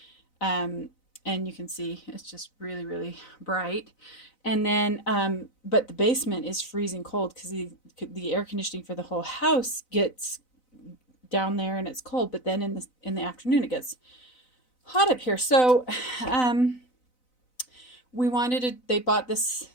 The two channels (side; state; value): right; late; 4.0 ms